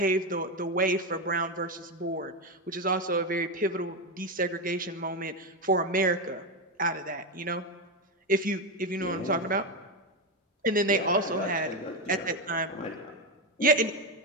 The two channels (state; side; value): normal; both; correlation 0.10